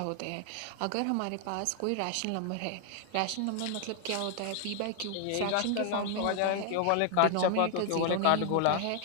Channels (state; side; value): different; both; correlation 0.00